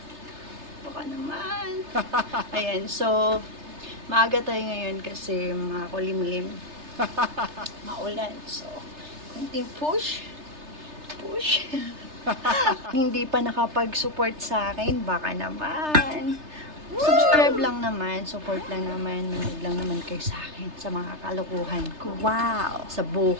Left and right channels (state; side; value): late; left; 3.3 ms